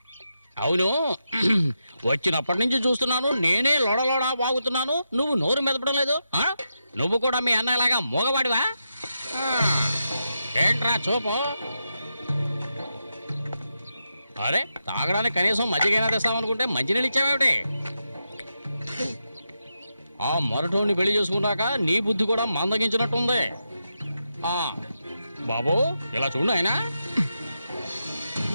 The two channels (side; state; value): both; inverted; correlation -0.87